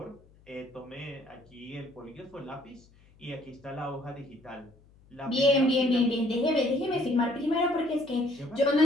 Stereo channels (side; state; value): left; noise; hum, 27 dB below the sound